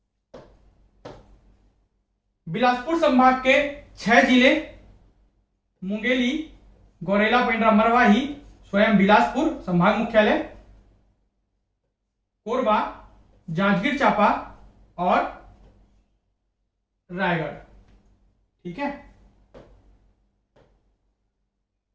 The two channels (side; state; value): both; identical; correlation 1.00